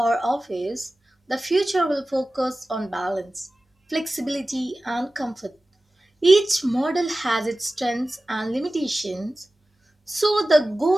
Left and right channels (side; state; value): both; normal; correlation 0.96